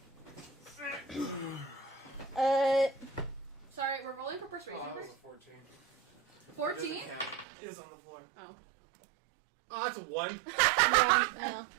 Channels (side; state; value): left; drops out; at 7.5 s